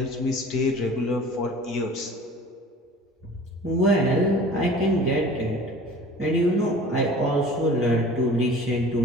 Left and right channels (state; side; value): normal; both; correlation 0.44